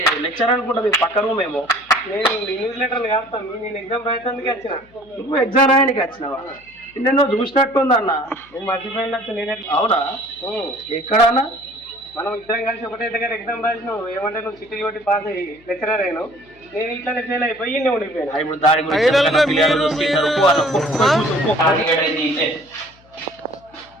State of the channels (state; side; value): noise; left; hum, 29 dB below the sound